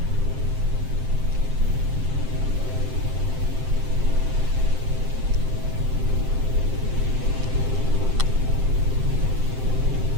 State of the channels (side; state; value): left; late; 7.6 ms